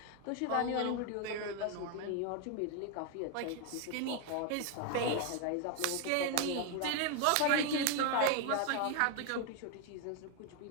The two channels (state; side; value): different; both; correlation 0.01